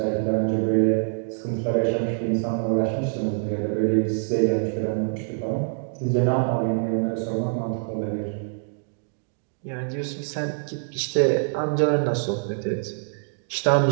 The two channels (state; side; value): silent; left; digital silence